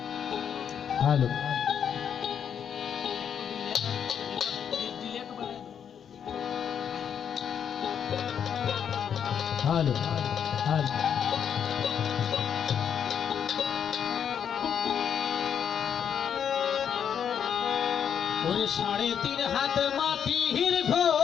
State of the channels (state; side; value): quieter; right; 8.1 dB